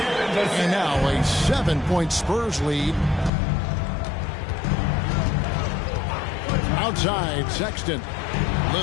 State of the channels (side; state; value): right; drops out; at 3.3 s